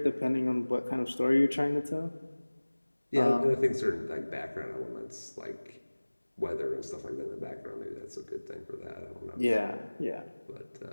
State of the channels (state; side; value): inverted; both; correlation -1.00